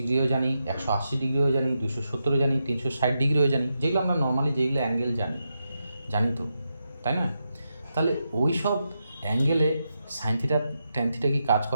জানি, 180 ডিগ্রিও জানি, 270 জানি, 360 ডিগ্রিও জানি, যেগুলো আমরা নর্মালি যেগুলো অ্যাঙ্গেল জানি তো, তাই না? তাহলে ওই সব অ্যাঙ্গেলে সাইন থিটা ট্যান থিটা কি কাজ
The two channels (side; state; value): both; inverted; correlation -0.86